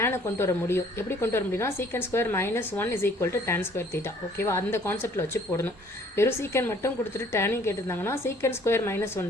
கொண்டு வர முடியும். எப்படி கொண்டு வர முடியும்னா secant square -1 is equal to tan square theta. ஓகேவா, அந்த கான்செப்ட்டில் வச்சு போடணும். வெறும் சீக்கன் மட்டும் கொடுத்துட்டு டேனையும் கேட்டிருந்தாங்கன்னா சீக்கன் ஸ்கொயர்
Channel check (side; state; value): both; normal; correlation 0.58